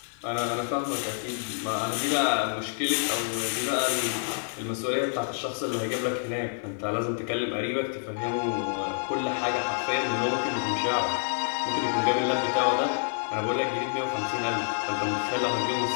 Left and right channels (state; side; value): silent; right; digital silence